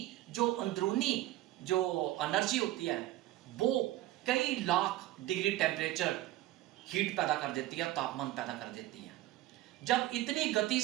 जो अंदरूनी जो एनर्जी होती है वो कई लाख डिग्री टेम्परेचर हीट पैदा कर देती है, तापमान पैदा कर देती है। जब इतनी गति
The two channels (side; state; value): left; quieter; 15.8 dB